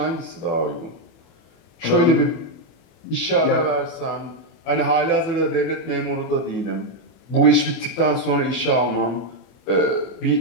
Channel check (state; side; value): late; right; 24 ms